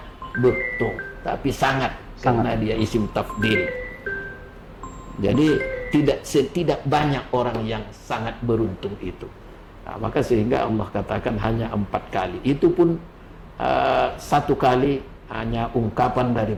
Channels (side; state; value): both; identical; correlation 1.00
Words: beruntung, tapi sangat. Karena dia isim tafdil. Jadi tidak banyak orang yang sangat beruntung itu. Maka sehingga Allah katakan hanya 4 kali. Itu pun 1 kali hanya ungkapan